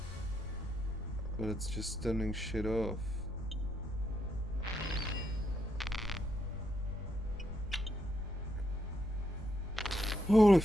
But it's just turning shit off. Holy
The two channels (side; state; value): both; normal; correlation 0.79